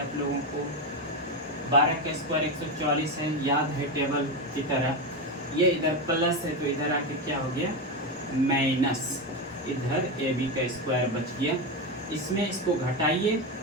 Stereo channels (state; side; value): normal; both; correlation 0.14